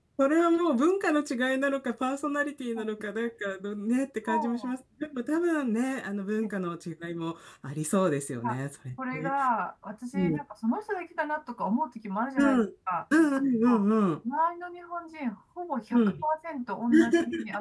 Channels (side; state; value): both; identical; correlation 1.00